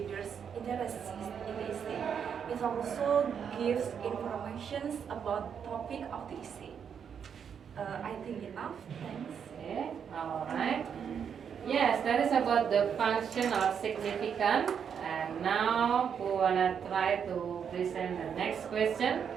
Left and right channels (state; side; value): quieter; left; 7.5 dB